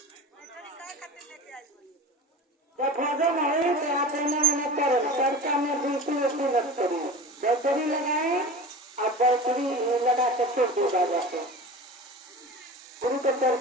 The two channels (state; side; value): normal; both; correlation 0.33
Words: जब भजन है तो आप इन्हें करो चर्चा में बिल्कुल मत करिए। बैटरी लगाए आप, बैटरी लगा के छोड़ दिया जाते गुरु के